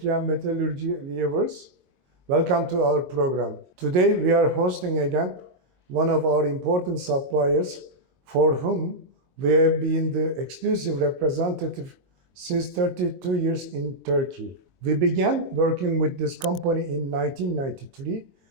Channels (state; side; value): late; left; 22 ms